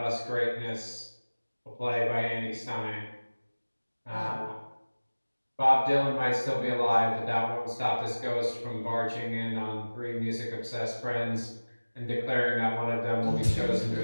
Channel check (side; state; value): both; inverted; correlation -1.00